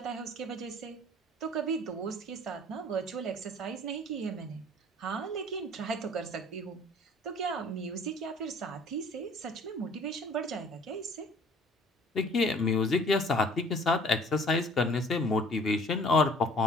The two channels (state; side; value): normal; both; correlation 0.53